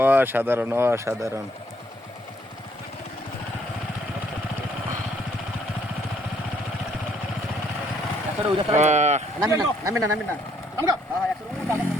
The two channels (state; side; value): normal; both; correlation 0.68